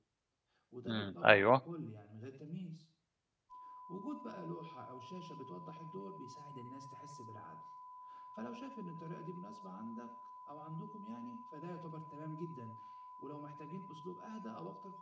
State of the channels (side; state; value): both; identical; correlation 1.00